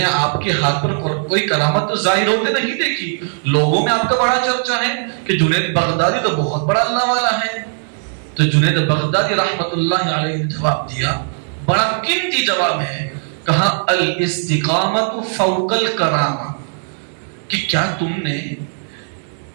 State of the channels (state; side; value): silent; left; 67 dB below the other